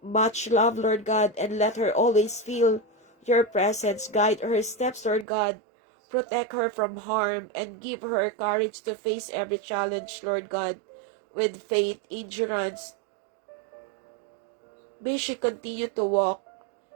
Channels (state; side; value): drops out; left; at 5.2 s